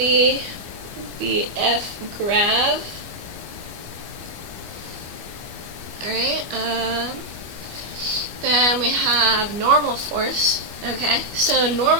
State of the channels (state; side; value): late; left; 24 ms